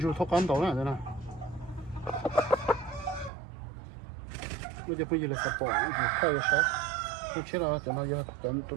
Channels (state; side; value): drops out; left; at 3.3 s